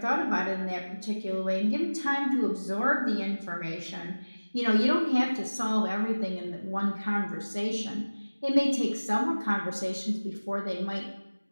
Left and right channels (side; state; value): both; inverted; correlation -1.00